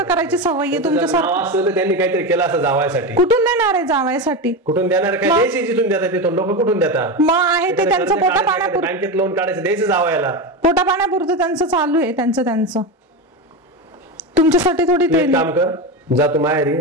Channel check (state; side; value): normal; both; correlation 0.17